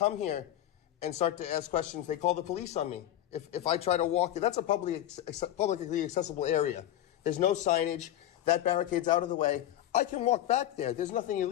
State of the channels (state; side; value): quieter; right; 12.4 dB